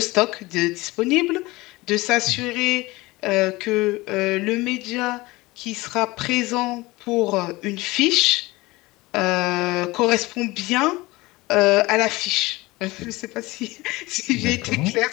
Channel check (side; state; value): right; quieter; 21.1 dB